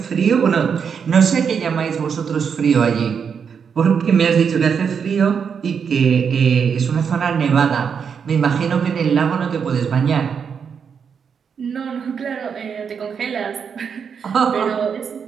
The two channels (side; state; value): left; quieter; 6.7 dB